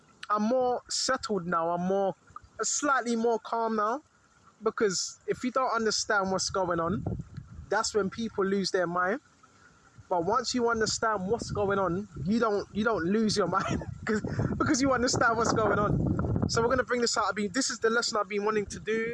settled now. I'm slightly more calm now, because if you don't understand what's going on, that's when people lose their mind. But once you understand what's going on, you don't lose your mind because you understand what's going on. So we're gonna bring this out. This is the lesson I've been wanting to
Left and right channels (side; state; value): both; identical; correlation 1.00